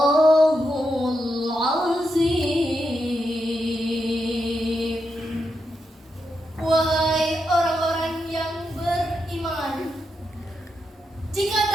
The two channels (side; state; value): both; normal; correlation 0.85